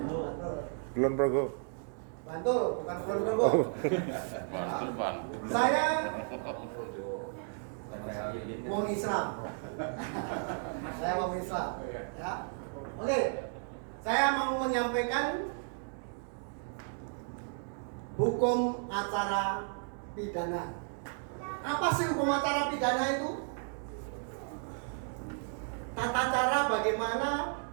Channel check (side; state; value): left; silent; 55 dB below the other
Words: Kulon Progo. Bantul, bukan Kulon Progo. Ya. Saya Wong Islam. Saya Wong Islam. Ya. Oke, saya mau menyampaikan hukum acara pidana. Apa sih hukum acara pidana itu? Tata cara bagaimana